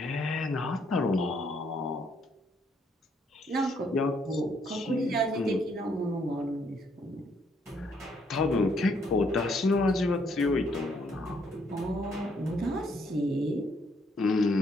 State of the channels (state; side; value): normal; both; correlation 0.70